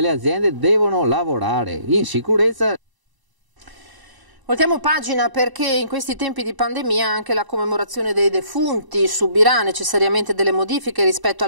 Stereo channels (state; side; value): late; left; 1.0 ms